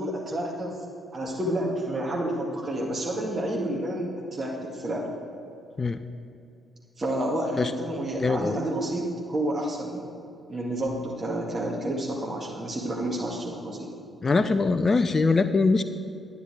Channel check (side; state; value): both; normal; correlation 0.80